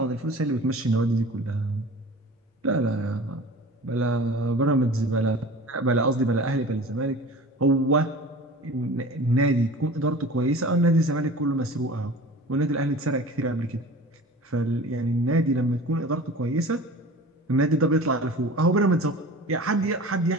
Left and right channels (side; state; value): both; normal; correlation 0.39